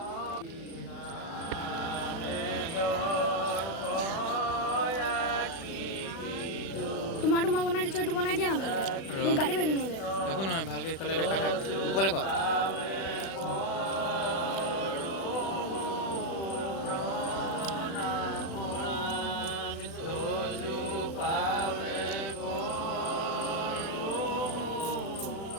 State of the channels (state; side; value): late; right; 36 ms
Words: তোমাৰ বনাই দিছো এইটো বনাই দিয়া না ভালকে মোক গালি পাৰিব নহ'লে একো নহয় ভালকে ইফালে দেখা থাক ওপৰলে ক